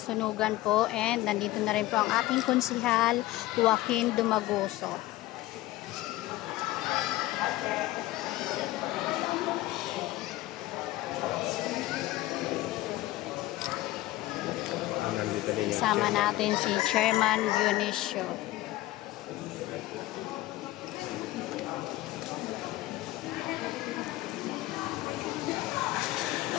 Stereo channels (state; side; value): quieter; right; 17.2 dB